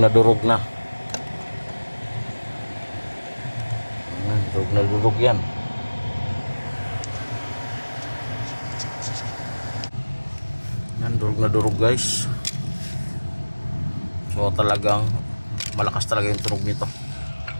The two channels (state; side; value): inverted; both; correlation -1.00